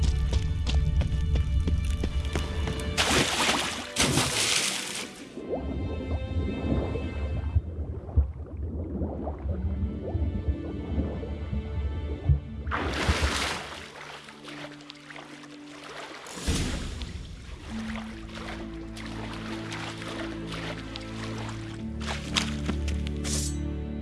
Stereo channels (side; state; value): both; identical; correlation 1.00